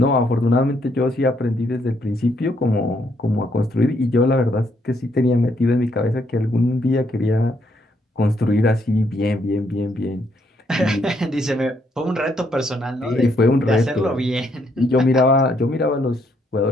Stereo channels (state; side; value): normal; both; correlation 0.73